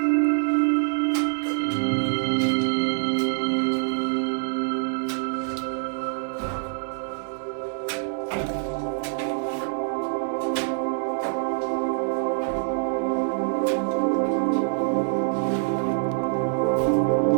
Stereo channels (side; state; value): left; silent; digital silence